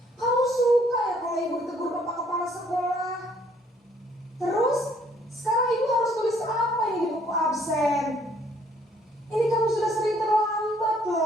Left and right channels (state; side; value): normal; both; correlation 0.64